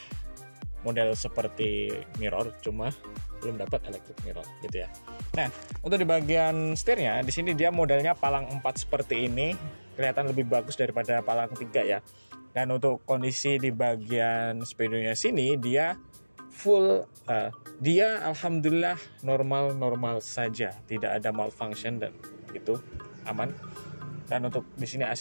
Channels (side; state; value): both; inverted; correlation -1.00